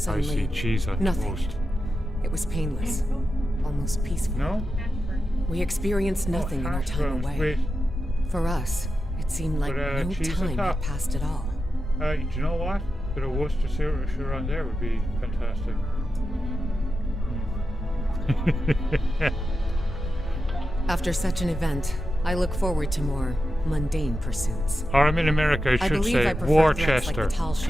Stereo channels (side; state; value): both; normal; correlation 0.90